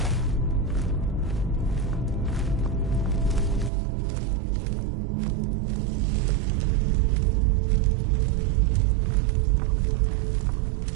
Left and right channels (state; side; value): drops out; left; at 3.7 s